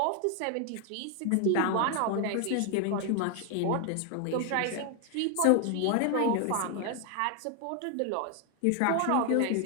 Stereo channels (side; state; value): both; different; correlation 0.00